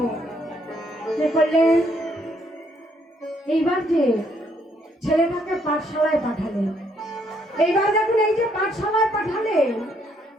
কে করলেন? এইবার যে ছেলেটাকে পাঠশালায় পাঠালেন, এইবার দেখুন এই যে পাঠশালায় পাঠালেন,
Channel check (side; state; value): both; normal; correlation 0.70